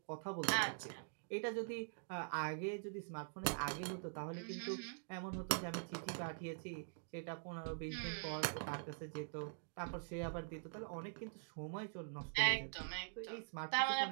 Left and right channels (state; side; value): silent; left; digital silence